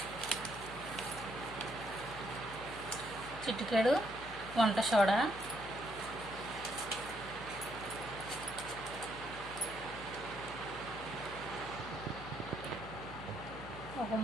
చిటికెడు వంట సోడా, ఒక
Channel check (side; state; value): left; noise; hum, 14 dB below the sound